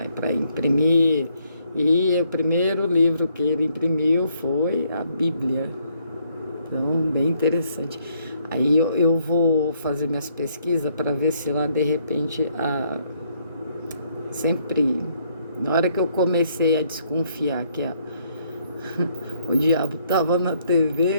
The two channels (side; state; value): both; inverted; correlation -0.70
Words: para imprimir. E o primeiro livro que ele imprimiu foi a Bíblia. Então, bem interessante. Aí eu vou fazer minhas pesquisas para ver se lá, de repente, sempre, na hora que eu comecei a desconfiar que o diabo estava na